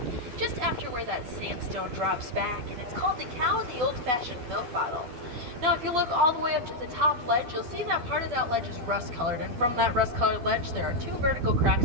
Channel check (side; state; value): left; late; 12 ms